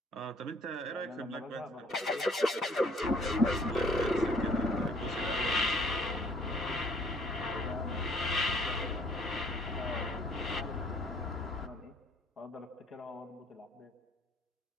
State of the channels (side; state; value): both; normal; correlation 0.61